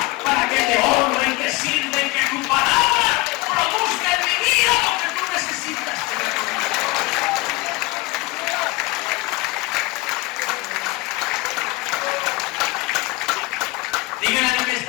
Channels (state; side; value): quieter; right; 22.3 dB